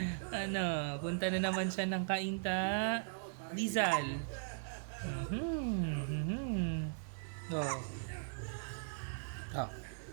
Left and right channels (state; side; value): silent; left; digital silence